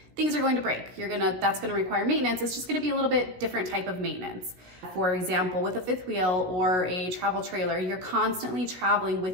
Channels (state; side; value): late; left; 16 ms